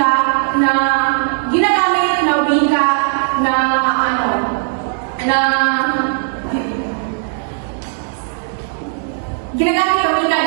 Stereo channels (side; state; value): left; silent; digital silence